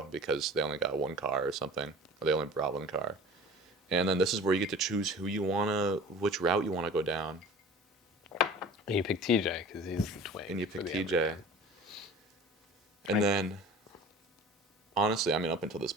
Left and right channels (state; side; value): normal; both; correlation 0.42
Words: because they only got one car or something, or they only brought one car. And then this is where you get to choose which route you wanna go down. And you pick TJ because he's the twin. And you for pick the TJ. Emma. And then, honestly, I mean, up until this